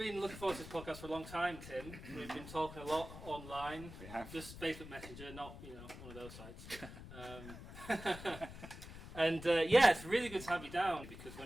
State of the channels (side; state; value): left; noise; rumble, 13 dB below the sound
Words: looking forward to this podcast for a long time, Tim. We've been talking a lot online, We have. just Facebook Messenger, not one of those sites. And yeah, it's really good to have you down because